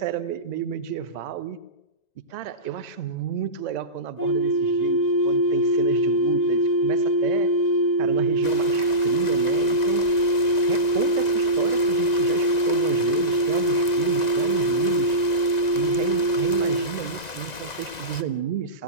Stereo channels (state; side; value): late; right; 1.9 ms